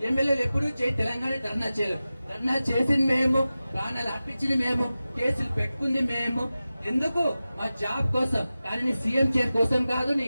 ఎమ్మెల్యేలు ఎప్పుడు జై తెలంగాణ ధర్నా చేయలేవు. ధర్నా చేసింది మేము, ప్రాణాలు అర్పించింది మేము, కేసులు పెట్టుకుంది మేము. ఎందుకు? మా జాబ్ కోసం. కానీ నీ సీఎం చైర్ కోసం కాదు, నీ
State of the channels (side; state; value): both; inverted; correlation -0.95